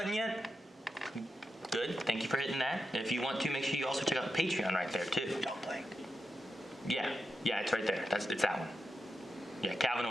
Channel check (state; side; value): normal; both; correlation 0.88